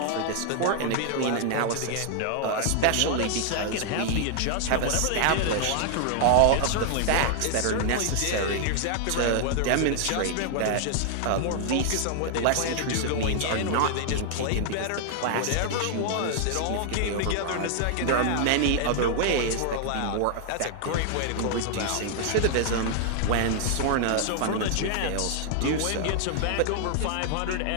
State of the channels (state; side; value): different; both; correlation 0.00